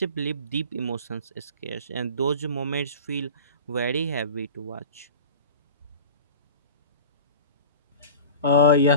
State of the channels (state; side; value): inverted; both; correlation -0.38